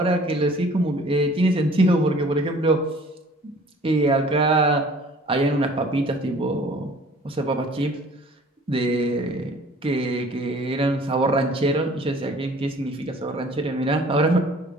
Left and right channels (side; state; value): both; normal; correlation 0.51